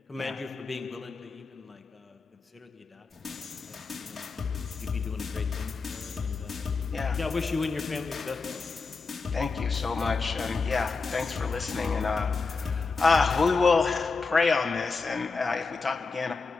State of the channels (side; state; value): right; quieter; 4.4 dB